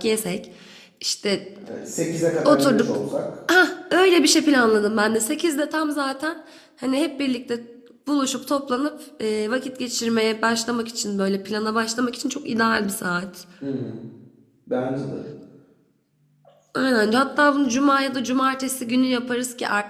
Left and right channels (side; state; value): both; identical; correlation 1.00